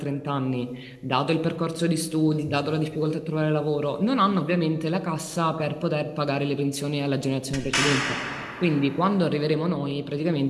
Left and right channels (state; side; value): identical; both; correlation 1.00